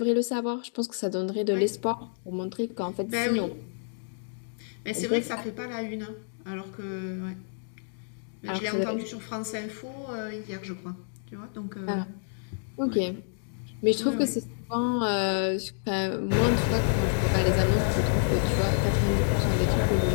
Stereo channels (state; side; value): silent; right; digital silence